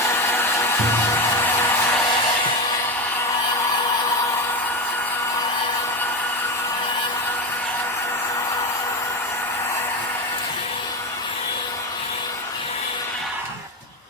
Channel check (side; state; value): both; normal; correlation 0.16